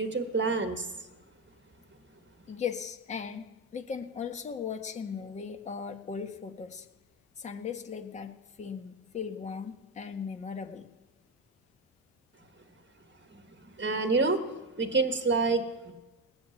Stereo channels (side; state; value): both; normal; correlation 0.12